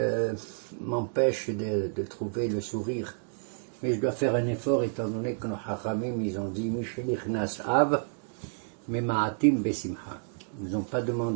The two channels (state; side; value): silent; left; digital silence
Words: m'empêche de trouver le sourire. Mais je dois faire un effort étant donné que nos hachamim, ils ont dit Mishenichnas Av, Memaatim Besimha. Ils nous ont pas